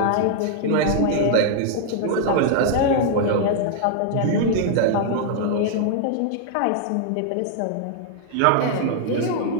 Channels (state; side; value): different; both; correlation 0.00